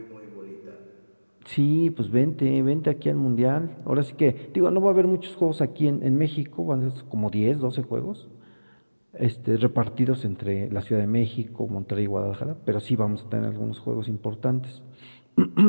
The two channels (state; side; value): inverted; both; correlation -1.00